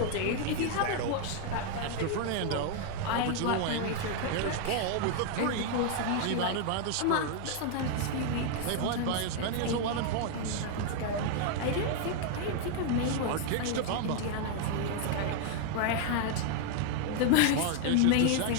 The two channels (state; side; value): different; both; correlation 0.00